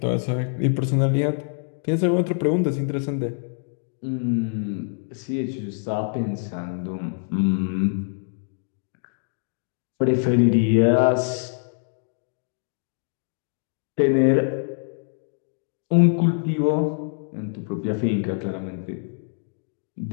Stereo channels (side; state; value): right; silent; digital silence